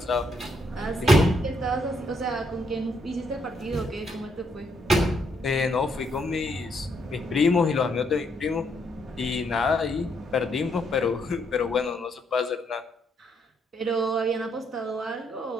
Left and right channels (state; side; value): normal; both; correlation 0.74